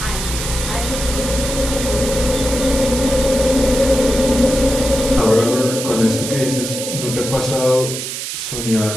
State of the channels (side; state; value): right; noise; hiss, 6 dB below the sound